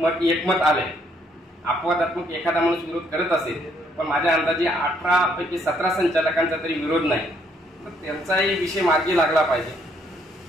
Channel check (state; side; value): normal; both; correlation 0.69